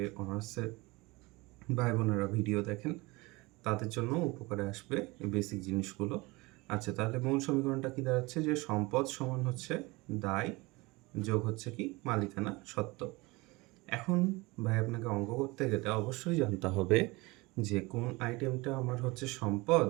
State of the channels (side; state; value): left; quieter; 23.6 dB